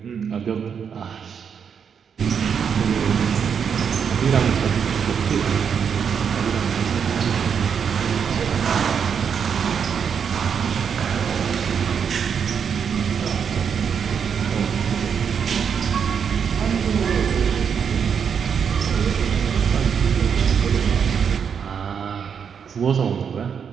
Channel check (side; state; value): left; quieter; 7.1 dB